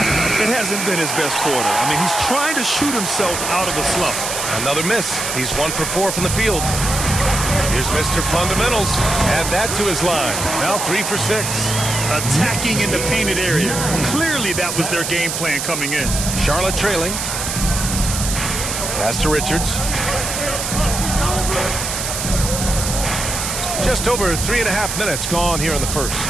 It hasn't been his best quarter. I mean, he's trying to shoot himself out of a slump. Another miss. He's 1 for 4 from the field. Here's Mr. Fundamentals. Add that to his line. Now 3 for 6. Attacking in the painted area. Clearly that was their game plan coming in. Charlotte trailing. Pass to Richards. Just over 3.5 minutes gone here in the first.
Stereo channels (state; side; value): noise; right; hiss, 3 dB below the sound